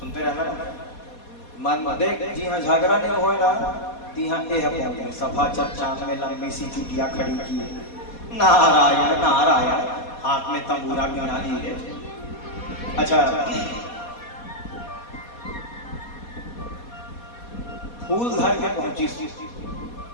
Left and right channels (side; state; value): right; late; 4.2 ms